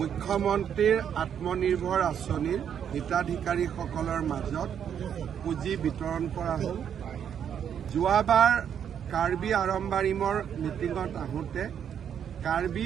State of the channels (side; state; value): left; quieter; 8.6 dB